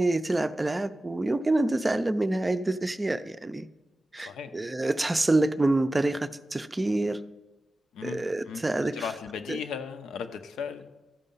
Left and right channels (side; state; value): both; normal; correlation 0.95